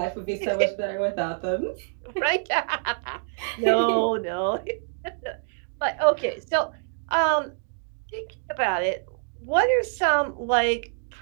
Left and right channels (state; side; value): silent; left; digital silence